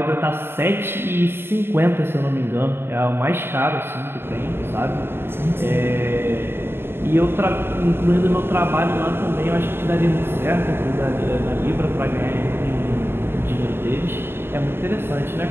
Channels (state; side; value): late; left; 0.11 ms